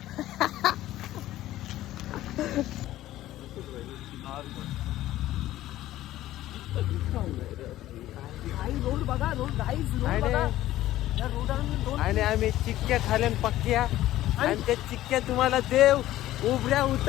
रोड बघा. आणि आम्ही चिक्क्या खाल्यान पक्क्या. आणि त्या चिक्क्या तुम्हाला देव उभ्या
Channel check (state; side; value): quieter; right; 14.7 dB